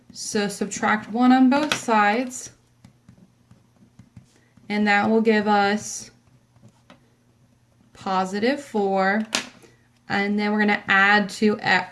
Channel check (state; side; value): identical; both; correlation 1.00